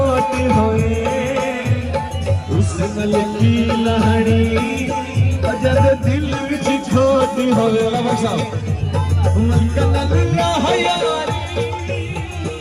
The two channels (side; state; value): both; identical; correlation 1.00